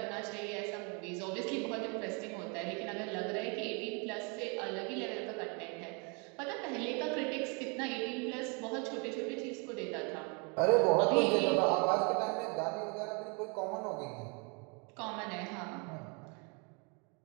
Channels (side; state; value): left; quieter; 33.7 dB